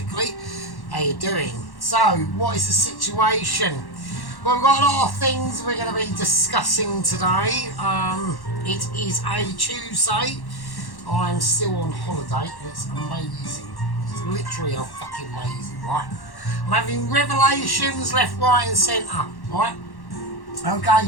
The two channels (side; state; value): right; late; 1.1 ms